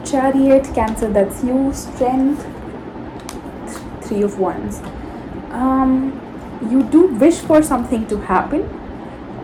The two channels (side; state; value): both; identical; correlation 1.00